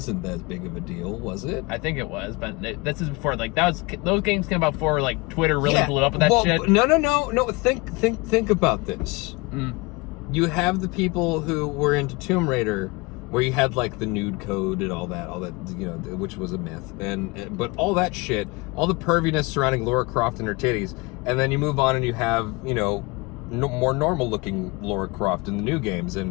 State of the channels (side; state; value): right; quieter; 25.4 dB